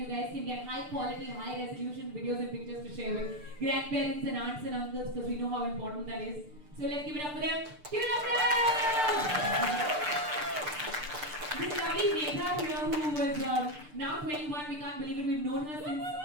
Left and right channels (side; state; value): left; late; 6.7 ms